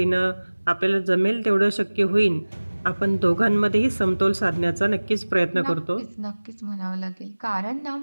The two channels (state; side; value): inverted; both; correlation -1.00